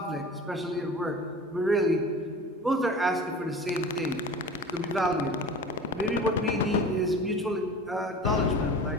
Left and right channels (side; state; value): both; normal; correlation 0.38